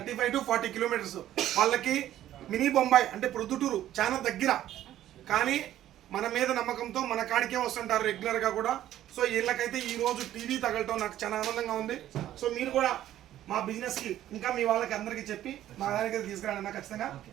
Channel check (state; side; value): quieter; left; 12.7 dB